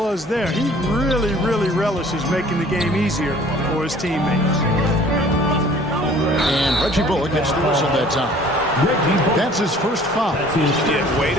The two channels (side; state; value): both; normal; correlation 0.52